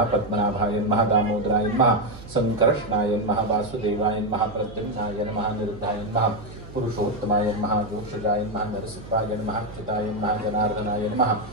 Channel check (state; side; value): noise; right; hum, 15 dB below the sound